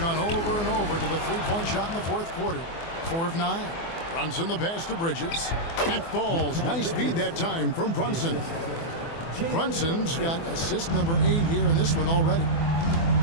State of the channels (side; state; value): right; late; 24 ms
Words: over and over to the three-point shot in the fourth quarter. 4 of 9. Brunson the pass to Bridges. That falls. Nice feed that time from Brunson. Brunson's got assist number 8 here in this one already.